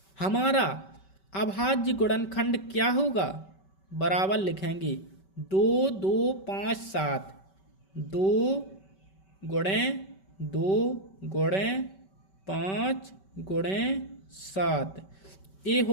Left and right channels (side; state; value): right; late; 5.2 ms